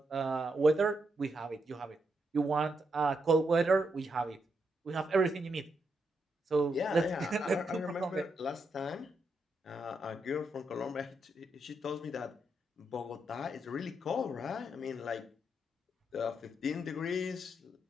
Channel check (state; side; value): normal; both; correlation 0.81